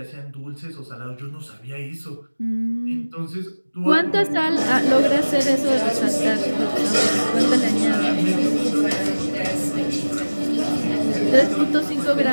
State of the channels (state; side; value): inverted; both; correlation -1.00